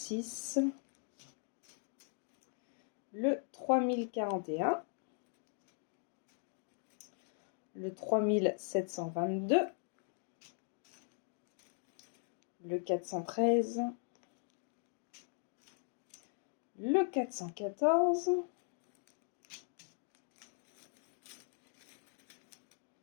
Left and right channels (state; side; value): silent; right; 51 dB below the other